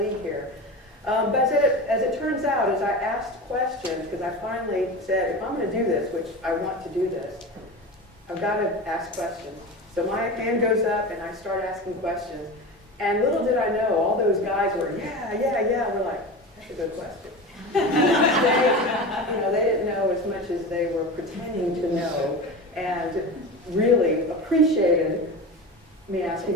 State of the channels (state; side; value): normal; both; correlation 0.28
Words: here. But as it turns out, as I asked questions, because I finally said, if I'm going to do this, which I want to do this, I've got to ask questions. So my hand goes up and I start asking questions. And little did I know, all those guys were, yeah, yeah, yeah. We're like, that's a good question. They didn't know as much as they were pretending to know, and really appreciated me